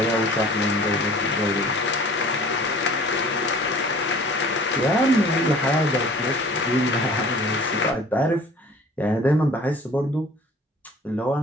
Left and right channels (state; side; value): normal; both; correlation 0.48